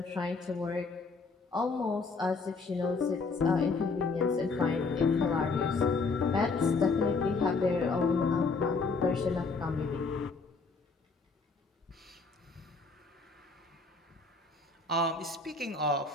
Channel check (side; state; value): right; quieter; 4.2 dB